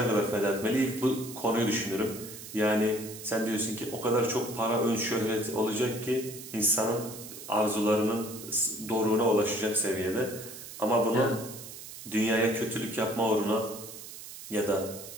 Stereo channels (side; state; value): right; noise; hiss, 13 dB below the sound